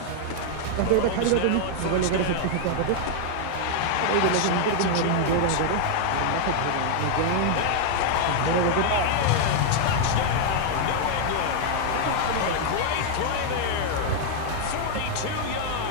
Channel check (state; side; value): different; both; correlation 0.00